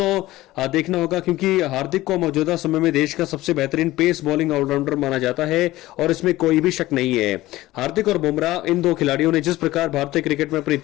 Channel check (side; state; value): right; quieter; 17.1 dB